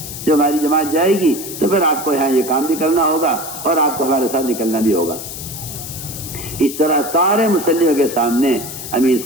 جب ہماری جماعت جائے گی تو پھر آپ کو یہاں یہ کام بھی کرنا ہوگا اور آپ کو ہمارے ساتھ نکلنا بھی ہوگا. اس طرح سارے مسلموں کے سامنے امیر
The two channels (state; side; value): noise; left; hiss, 9 dB below the sound